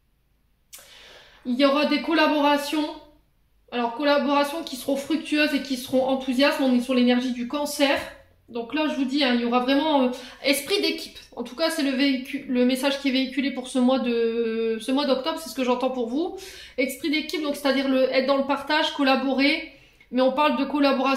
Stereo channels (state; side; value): identical; both; correlation 1.00